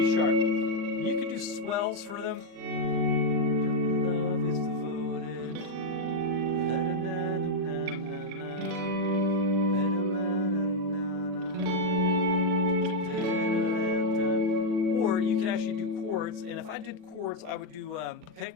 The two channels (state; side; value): late; left; 39 ms